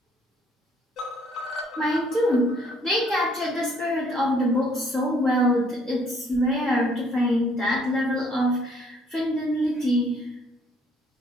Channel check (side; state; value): both; normal; correlation 0.63